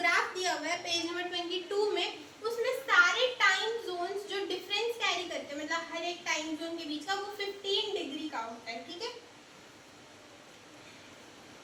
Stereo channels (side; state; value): both; identical; correlation 1.00